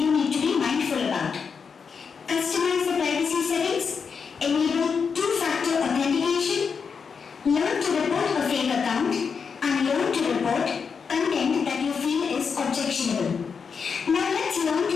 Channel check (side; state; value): right; quieter; 5.9 dB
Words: need to be mindful about. Customize the privacy settings, enable two-factor authentication, learn to report a fake account, and learn to report content that you feel is objectionable. Now let's learn to